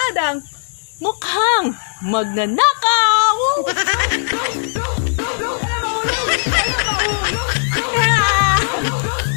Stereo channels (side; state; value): right; silent; 68 dB below the other